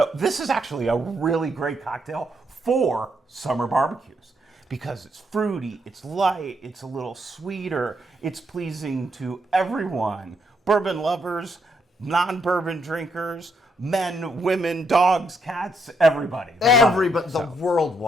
this is actually a really great cocktail for summer barbecues because it's fruity, it's light, it's a little sweeter, it's pleasing to everyone. Bourbon lovers, non-bourbon drinkers, men, women, dogs, cats, everybody. Everybody. The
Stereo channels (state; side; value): normal; both; correlation 0.76